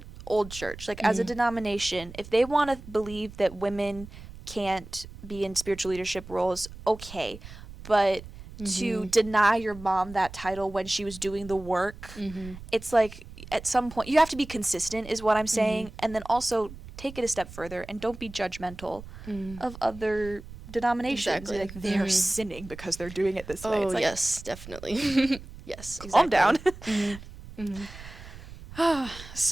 old church, like as a denomination, if they want to believe that women can't be in spiritual leadership roles, okay. But to deny your mom that title when she was doing the work, it's like at some point you have to be consistent is what I'm saying. And then also take it a step further and don't be judgmental of other denominations. Exactly. Like they're sinning because they're doing it this way. It's like, yes, definitely. Yes. Calm down.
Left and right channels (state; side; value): noise; right; rumble, 15 dB below the sound